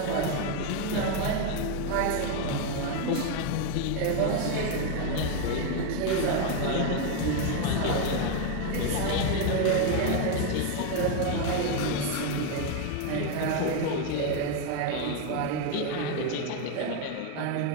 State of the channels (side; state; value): both; different; correlation 0.01